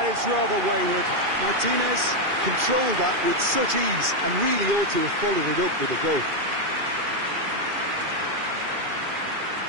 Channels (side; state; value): left; late; 2.4 ms